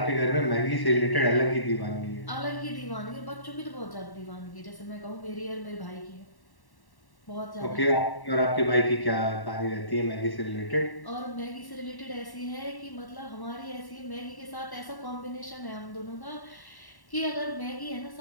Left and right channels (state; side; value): late; right; 1.1 ms